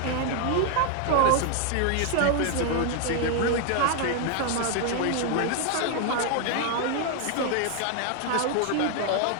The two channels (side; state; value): both; different; correlation 0.00